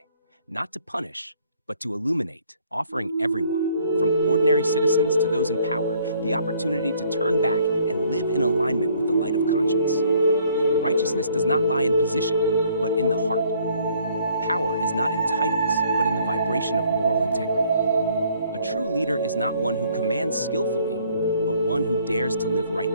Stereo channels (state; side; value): inverted; both; correlation -0.62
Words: not to punish, but to illuminate, offering everyone, from ordinary citizens to those in power, the opportunity to turn back and live in alignment with the light of conscience. Righteousness does not lie in position, but in the heart. Power is not in titles, but in the vibration of moral integrity. A true leader is not one who commands skillfully, but one who dares to live